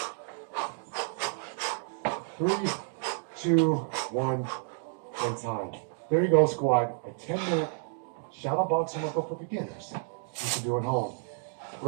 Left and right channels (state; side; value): silent; left; 58 dB below the other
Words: Three, 2, 1, and time. There you go, squad. A 10-minute shadow boxing workout for beginners. You can do at home.